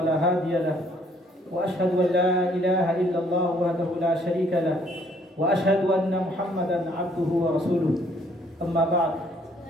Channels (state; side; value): normal; both; correlation 0.64